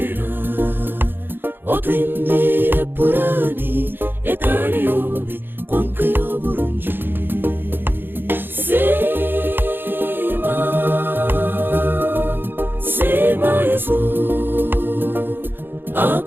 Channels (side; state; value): left; late; 0.099 ms